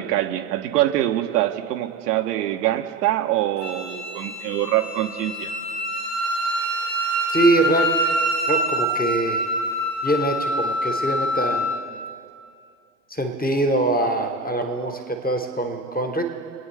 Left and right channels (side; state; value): left; quieter; 3.1 dB